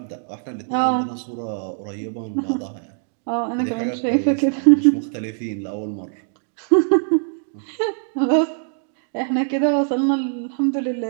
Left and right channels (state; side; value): silent; left; digital silence